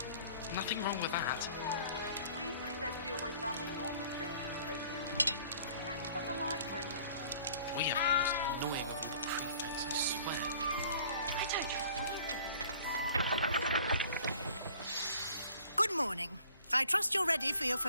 Nothing wrong with that. Weasley said she always found the dormitory in his poster room. Better than the library. We have the most annoying of all the prefects, I swear. I don't trust them. Good morning. I trust you're ready for your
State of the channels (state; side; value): inverted; both; correlation -0.52